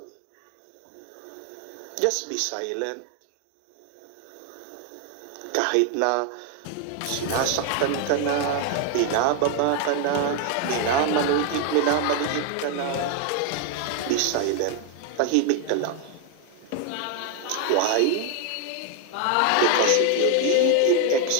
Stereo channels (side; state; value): both; different; correlation 0.01